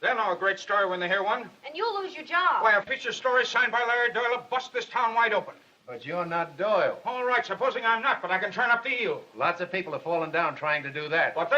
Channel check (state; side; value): identical; both; correlation 1.00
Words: They'll know a great story when they hear one. And you'll lose your job. Why, a feature story signed by Larry Doyle will bust this town wide open. But you're not Doyle. All right, supposing I'm not, but I can turn up the eel. Lots of people have fallen down trying to do that. But